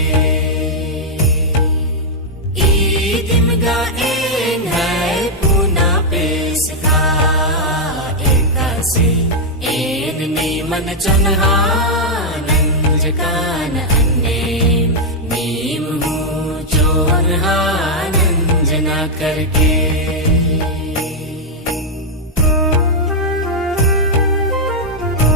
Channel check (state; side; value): normal; both; correlation -0.03